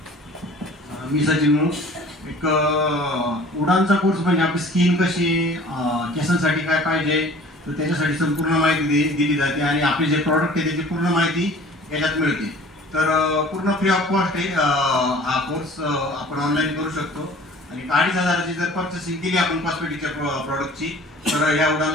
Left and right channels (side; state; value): both; normal; correlation 0.47